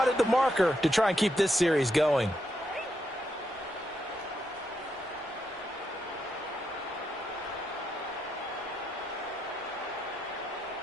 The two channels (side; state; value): both; normal; correlation 0.81